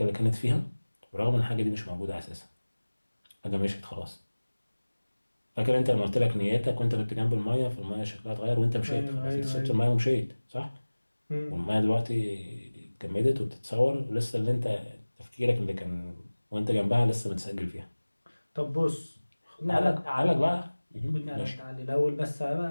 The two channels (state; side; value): inverted; both; correlation -1.00